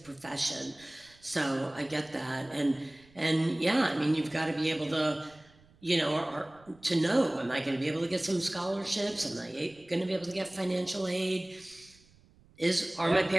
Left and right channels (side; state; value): right; noise; rumble, 28 dB below the sound